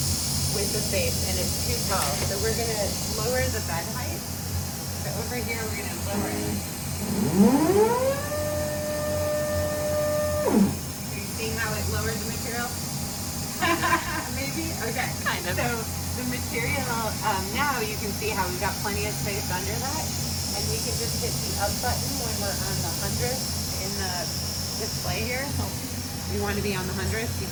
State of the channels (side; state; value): both; identical; correlation 1.00